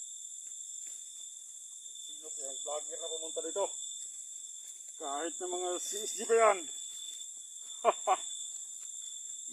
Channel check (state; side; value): identical; both; correlation 1.00